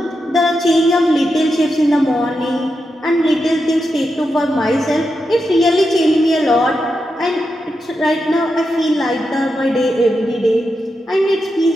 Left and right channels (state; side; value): normal; both; correlation 0.87